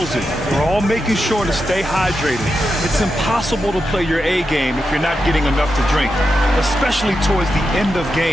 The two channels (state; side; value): normal; both; correlation 0.87